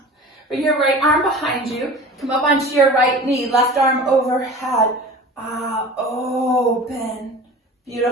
Bring your right arm behind you. Come up onto your right knee, left arm overhead. Open.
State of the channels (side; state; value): both; normal; correlation 0.39